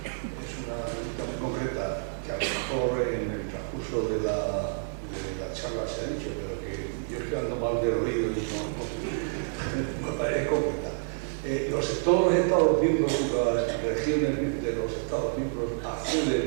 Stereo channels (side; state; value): left; silent; digital silence